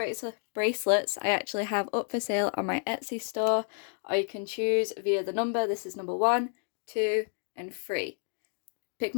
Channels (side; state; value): right; silent; 55 dB below the other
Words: I actually have up for sale on my Etsy store, or you can choose via the number. This is number 1, 2 and 3. Pick